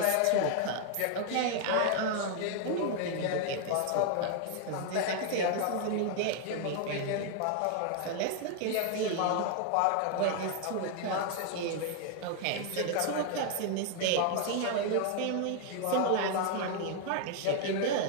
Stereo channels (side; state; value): both; different; correlation 0.00